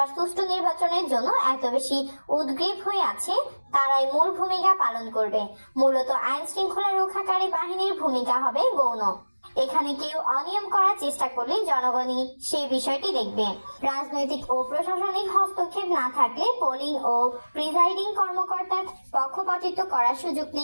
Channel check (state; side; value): inverted; both; correlation -1.00